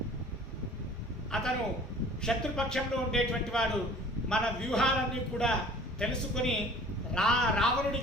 అతను శత్రుపక్షంలో ఉండేటువంటి వాడు మన వ్యూహాలన్నీ కూడా తెలుసుకొని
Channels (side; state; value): both; normal; correlation 0.49